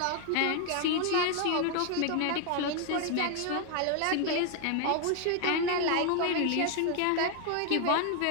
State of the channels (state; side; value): different; both; correlation 0.00